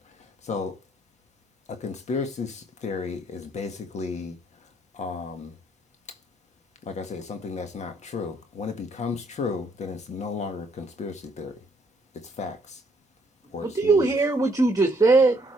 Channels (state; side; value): normal; both; correlation 0.68